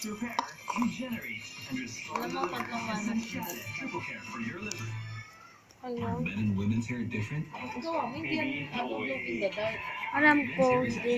repair, regenerate, and restore the liver. Essentiale triple care for your liver. Hello? Men and women's hair different? Ikaw, hindi yan glow in the dark. Alam ko, Men's hair is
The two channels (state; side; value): identical; both; correlation 1.00